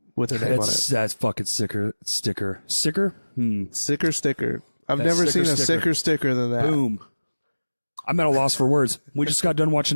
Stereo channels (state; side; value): inverted; both; correlation -1.00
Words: with their name on it. That's fucking sticker. Sicker? Sicker sticker. I've That never sicker seen a sticker. sicker sticker than that. Boom. I'm at a loss for words. We just got done